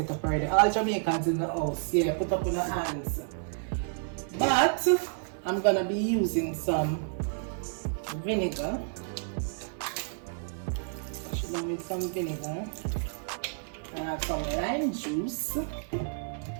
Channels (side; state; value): left; silent; digital silence